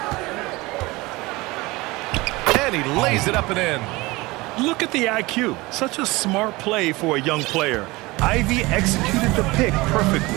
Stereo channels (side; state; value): left; quieter; 22.0 dB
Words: And he lays it up and in. Look at the IQ. Such a smart play for a young player. Ivy executed the pick